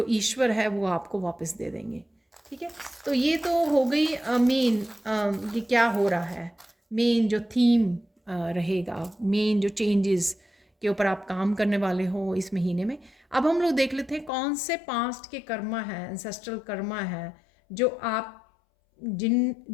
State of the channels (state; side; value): drops out; right; at 14.3 s